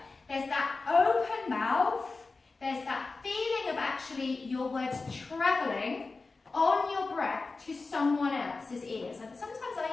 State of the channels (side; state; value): right; quieter; 3.9 dB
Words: actually your words travelling on your breath to someone else's ears. And sometimes